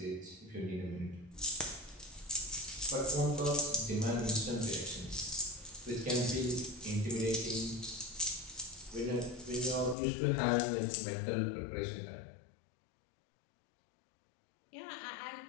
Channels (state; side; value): drops out; right; at 10.0 s